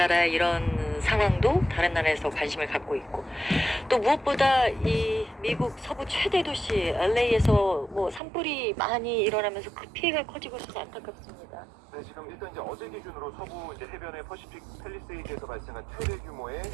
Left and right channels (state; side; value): drops out; left; at 8.2 s